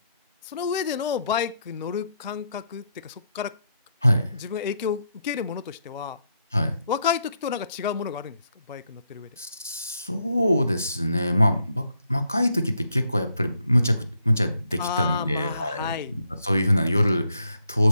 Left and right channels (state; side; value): inverted; both; correlation -0.77